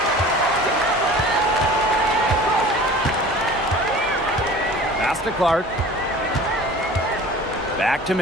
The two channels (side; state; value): both; normal; correlation 0.42